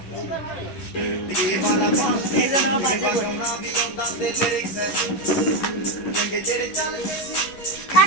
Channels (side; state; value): right; late; 11 ms